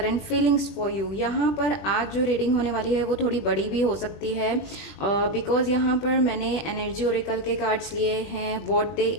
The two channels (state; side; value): late; right; 21 ms